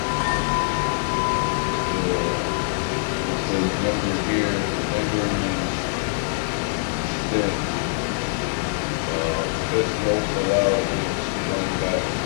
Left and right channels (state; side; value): silent; right; digital silence